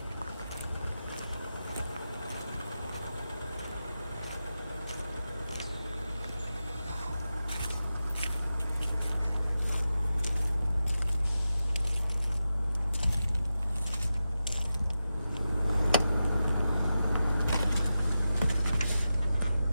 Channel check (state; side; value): inverted; both; correlation -0.91